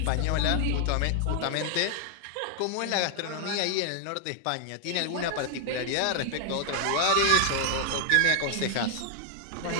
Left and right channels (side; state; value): both; different; correlation 0.00